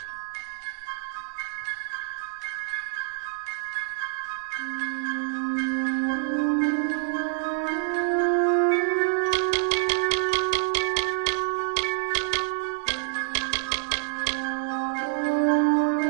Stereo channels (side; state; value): left; silent; digital silence